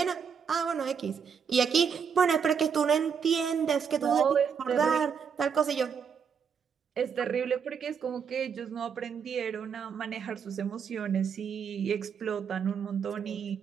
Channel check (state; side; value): quieter; left; 6.7 dB